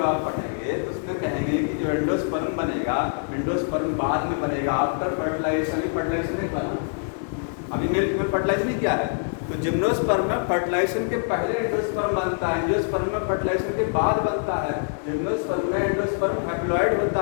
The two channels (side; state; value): right; silent; 62 dB below the other